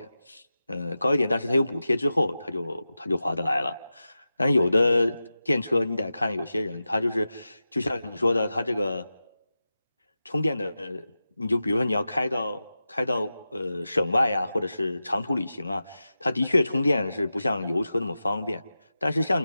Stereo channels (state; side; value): inverted; both; correlation -0.93